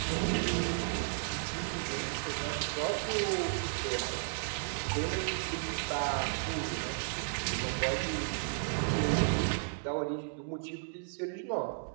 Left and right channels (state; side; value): silent; left; digital silence